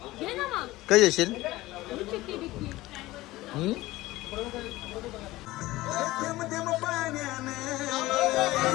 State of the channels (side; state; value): right; quieter; 18.2 dB